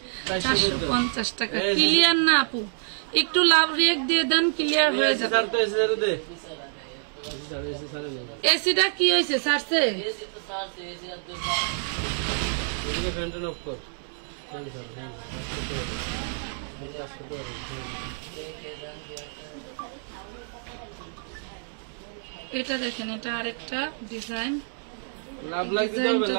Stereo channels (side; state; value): left; silent; digital silence